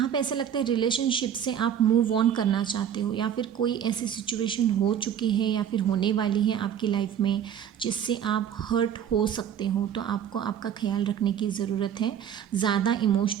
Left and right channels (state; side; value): quieter; left; 9.1 dB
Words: पे ऐसा लगता है रिलेशनशिप से आप मूव ऑन करना चाहते हो, या फिर कोई ऐसी सिचुएशन हो चुकी है या फिर होने वाली है आपकी लाइफ में जिससे आप हर्ट हो सकते हो। तो आपको आपका ख्याल रखने की ज़रूरत है, ज़्यादा